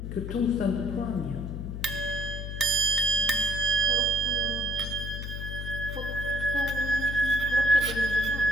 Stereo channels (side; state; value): left; noise; hum, 6 dB below the sound